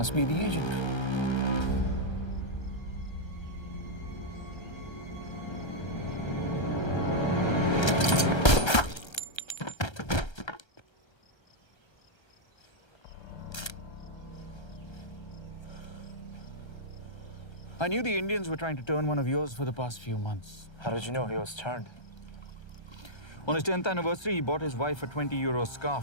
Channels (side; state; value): right; late; 1.3 ms